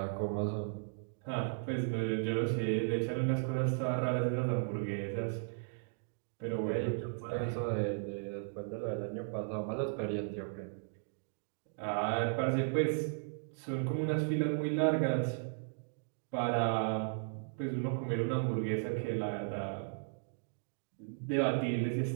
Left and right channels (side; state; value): left; silent; digital silence